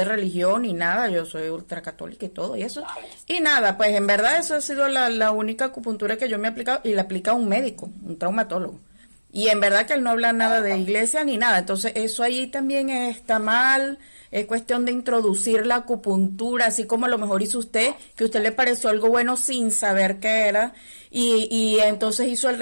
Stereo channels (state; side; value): inverted; both; correlation -1.00